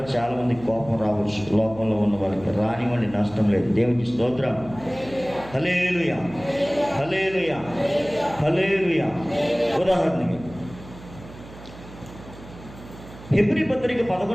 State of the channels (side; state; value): right; noise; hum, 17 dB below the sound